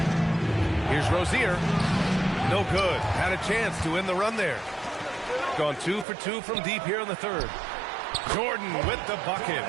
Here's Rozier. No good. Had a chance to end the run there. Gone 2 for 2 from deep here in the third. Jordan with the bucket.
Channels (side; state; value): left; drops out; at 6.1 s